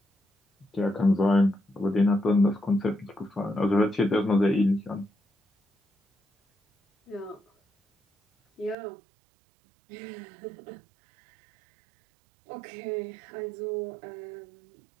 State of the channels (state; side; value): drops out; left; at 8.8 s